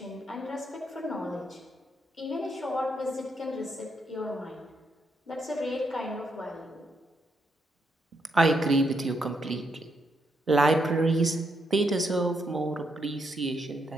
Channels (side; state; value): both; normal; correlation 0.78